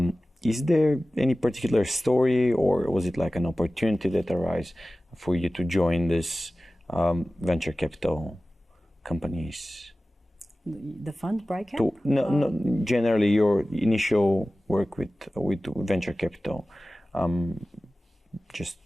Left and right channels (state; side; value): normal; both; correlation 0.96